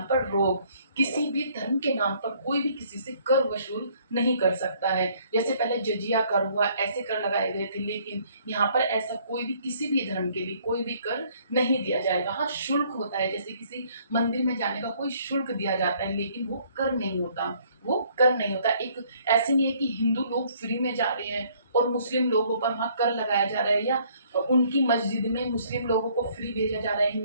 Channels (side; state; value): both; inverted; correlation -0.62